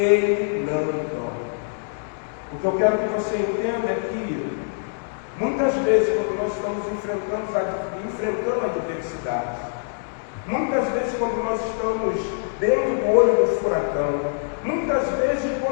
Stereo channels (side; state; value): right; silent; digital silence